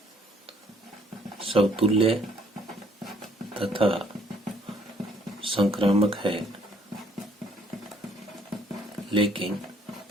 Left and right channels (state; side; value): normal; both; correlation 0.63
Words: समतुल्य तथा संक्रामक है लेकिन